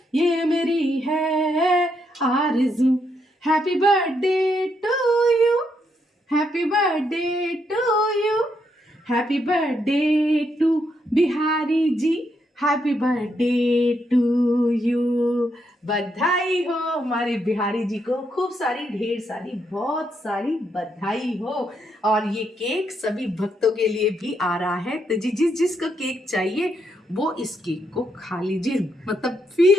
ये मेरी है आरज़ू। Happy birthday to you, happy birthday to you, happy birthday to Bihari ji, happy birthday to you. बधाई हो हमारे बिहारी जी को, खूब सारी ढेर सारी बहुत सारी बधाई हो। और ये केक सभी भक्तों के लिए भी आ रहा है। तो जिस जिसको केक चाहिए वो इस केक को खा लीजिए, मतलब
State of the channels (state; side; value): normal; both; correlation 0.78